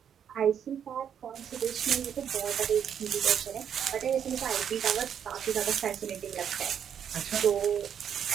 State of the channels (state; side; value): quieter; left; 8.5 dB